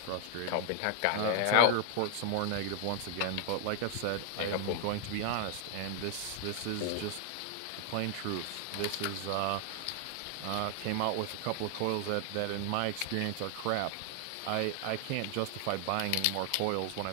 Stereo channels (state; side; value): different; both; correlation 0.00